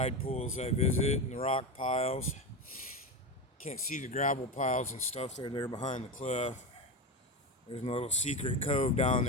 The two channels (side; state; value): both; normal; correlation 0.18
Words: pools I visit and the rock piles. Can't see the gravel piles and stuff. They're there behind the cliff. There's a little secret cove down